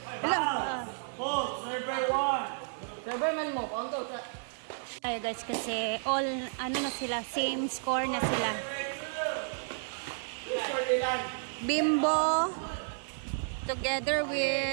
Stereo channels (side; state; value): left; silent; digital silence